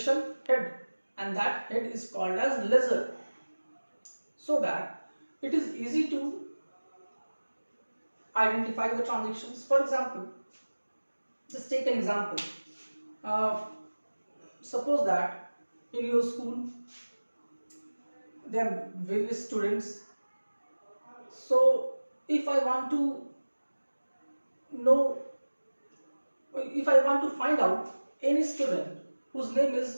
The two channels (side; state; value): both; inverted; correlation -1.00